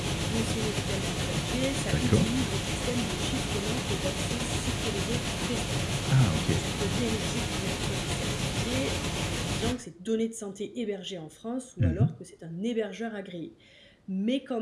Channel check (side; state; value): both; identical; correlation 1.00